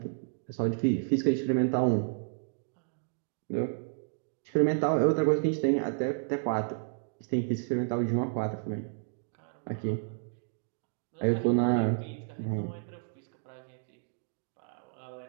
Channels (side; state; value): left; silent; digital silence